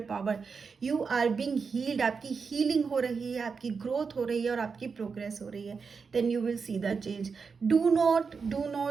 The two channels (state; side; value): quieter; left; 5.3 dB